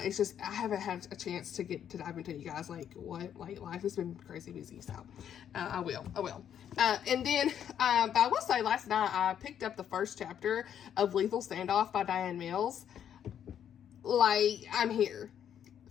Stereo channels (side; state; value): right; quieter; 9.3 dB